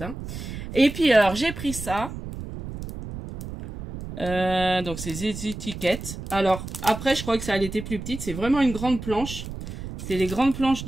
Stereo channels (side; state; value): right; noise; rumble, 9 dB below the sound